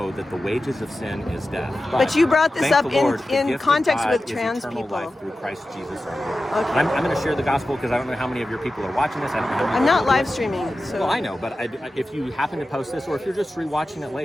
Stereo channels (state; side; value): normal; both; correlation 0.93